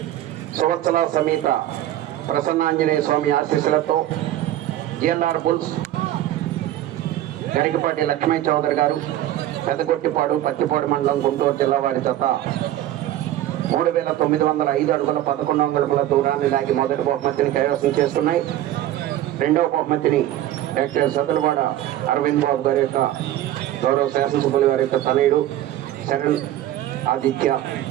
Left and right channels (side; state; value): left; quieter; 13.2 dB